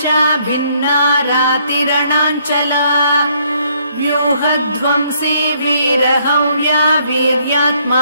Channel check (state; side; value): inverted; both; correlation -0.68